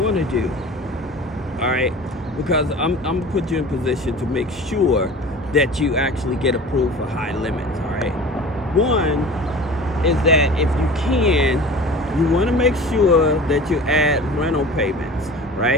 to do. All right, because I'm gonna put you in position to make sure that you actually get approved for high limits. All right, one is that if you can, you want to make sure that you add rental payments,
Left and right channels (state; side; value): normal; both; correlation 0.39